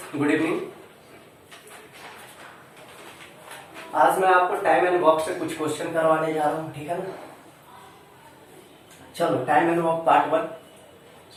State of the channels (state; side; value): identical; both; correlation 1.00